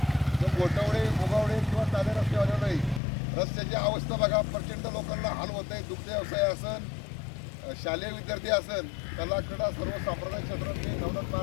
गोटवडे मुगावडे किंवा साधे रस्त्यावर नाही. रस्त्याची अवस्था बघा, प्रचंड लोकांना हाल होत आहे. दुग्ध व्यवसाय असन, शालेय विद्यार्थी असन, कला क्रीडा सर्व सांप्रदायिक क्षेत्रातले नवनाथ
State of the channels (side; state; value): right; drops out; at 3.0 s